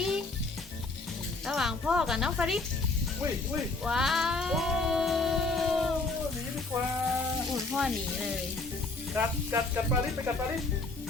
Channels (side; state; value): right; quieter; 3.5 dB